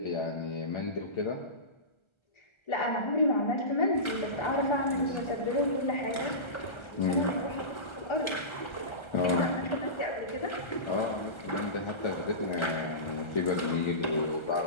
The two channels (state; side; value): late; right; 1.3 ms